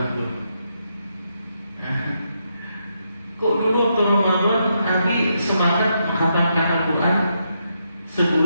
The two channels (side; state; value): both; inverted; correlation -0.81